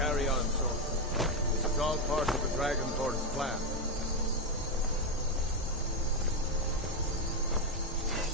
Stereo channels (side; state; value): both; normal; correlation 0.07